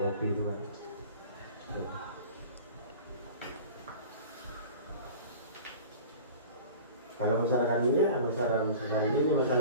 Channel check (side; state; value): both; inverted; correlation -0.39